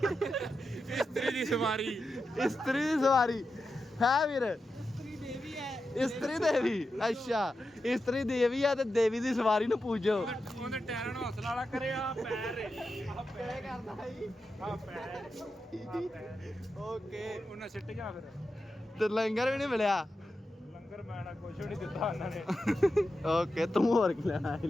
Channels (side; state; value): both; normal; correlation 0.89